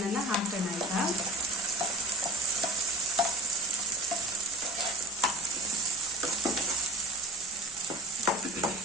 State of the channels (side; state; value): both; normal; correlation 0.38